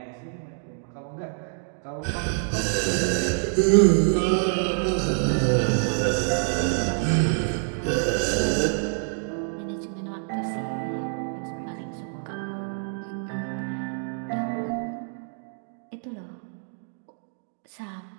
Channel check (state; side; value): silent; left; 61 dB below the other